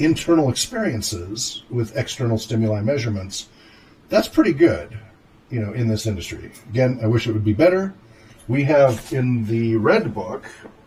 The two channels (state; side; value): identical; both; correlation 1.00